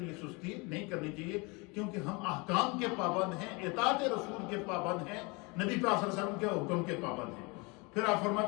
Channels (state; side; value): quieter; right; 28.3 dB